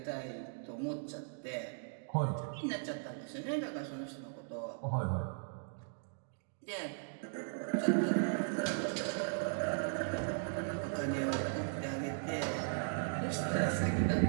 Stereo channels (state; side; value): silent; left; digital silence